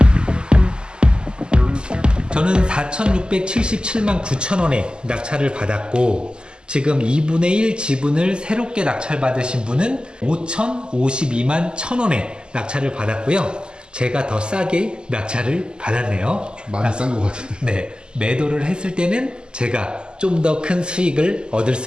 저는 4,677만 9천원에 낙찰을 받았고, 지금 2분의 1 지분을 새롭게 낙찰받으신 분은 5,052만 1,000원에 낙찰을 받았고요. 제가 더 싸게 낙찰을 받았네요. 많이 싼 것 같은데. 네, 매도를 했을 때는 제가 좀 더 큰 수익을 얻을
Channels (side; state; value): left; late; 0.048 ms